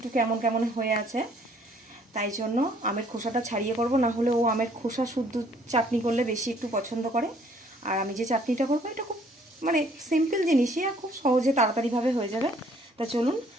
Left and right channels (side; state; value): both; normal; correlation 0.61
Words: কেমন কেমন হয়ে আছে। তাই জন্য আমের খোসাটা ছাড়িয়ে করব, না হলে ও আমের খোসা শুদ্ধ চাটনি করলে বেশি একটু পছন্দ করে। আর আমি যে চাটনিটা করবো এটা খুব মানে সিম্পল জিনিসই, আর খুব সহজে তাড়াতাড়িভাবে হয়ে যাবে। তা চলুন,